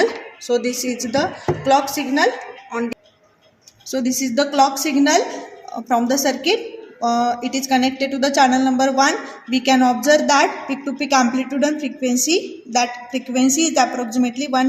So this is the clock signal on. So this is the clock signal from the circuit. It is connected to the channel number 1. We can observe that peak to peak amplitude and frequency. That frequency is approximately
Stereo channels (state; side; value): identical; both; correlation 1.00